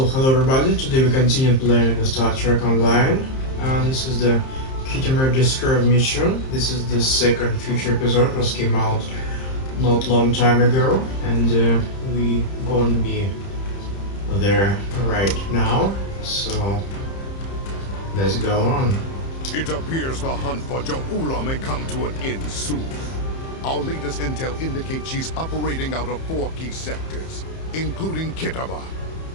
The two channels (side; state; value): right; late; 30 ms